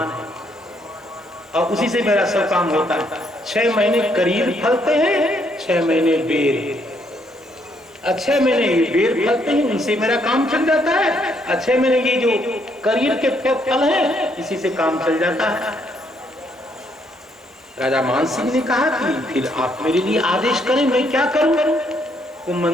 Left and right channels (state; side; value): normal; both; correlation 0.71